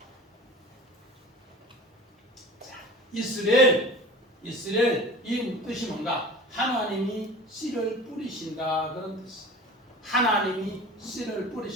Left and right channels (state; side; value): normal; both; correlation 0.39